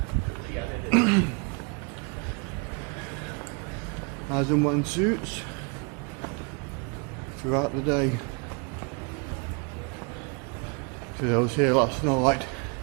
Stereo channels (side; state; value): left; quieter; 33.7 dB